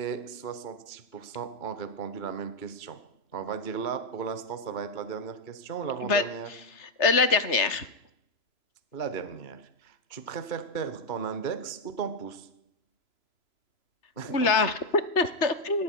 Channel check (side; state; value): right; late; 3.0 ms